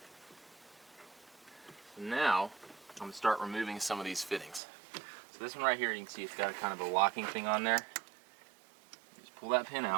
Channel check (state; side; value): drops out; left; at 4.6 s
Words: So now I'm going to start removing some of these fittings. So this one right here, you can see it's got a kind of a locking thing on there. Just pull that pin